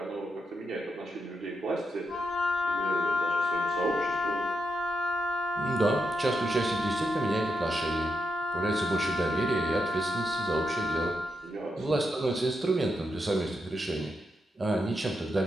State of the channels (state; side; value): normal; both; correlation 0.84